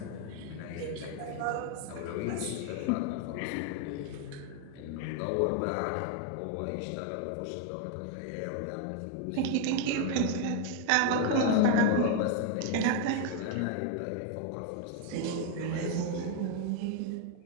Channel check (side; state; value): both; different; correlation 0.01